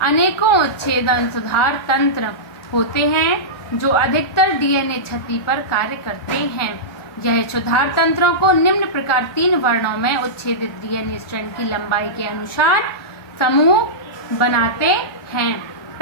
अनेकों उच्छेदन सुधार तंत्र होते हैं, जो अधिकतर डीएनए क्षति पर कार्य करते हैं। यह सुधार तंत्रों को निम्न प्रकार 3 वर्णों में उच्छेदित डीएनए स्ट्रैंड की लंबाई के अनुसार समूह बनाते हैं।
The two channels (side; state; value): right; late; 1.4 ms